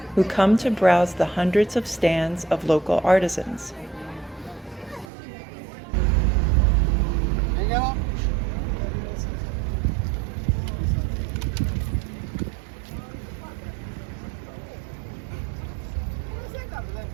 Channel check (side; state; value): left; drops out; at 5.1 s